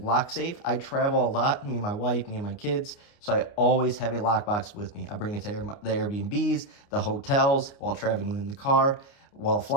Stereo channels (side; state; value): right; late; 29 ms